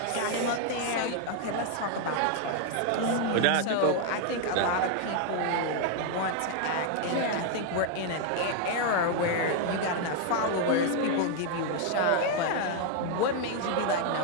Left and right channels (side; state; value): both; different; correlation 0.00